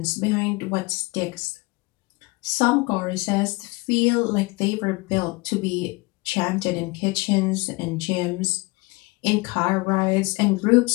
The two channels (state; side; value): quieter; right; 25.0 dB